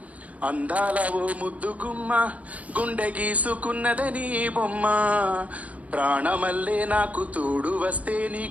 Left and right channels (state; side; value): late; left; 0.069 ms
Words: అందాల ఓ ముద్దు గుమ్మ, గుండె గీసుకున్నదని బొమ్మ, ప్రాణమల్లే నాకు తోడు వస్తే